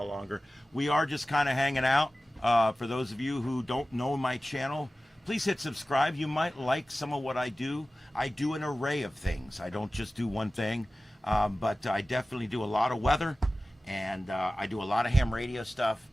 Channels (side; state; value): both; normal; correlation 0.96